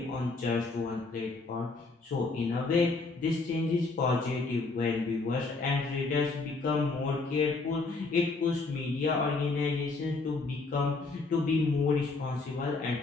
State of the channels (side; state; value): right; quieter; 3.8 dB